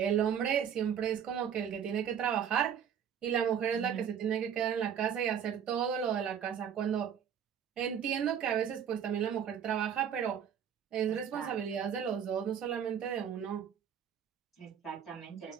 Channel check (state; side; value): quieter; left; 8.4 dB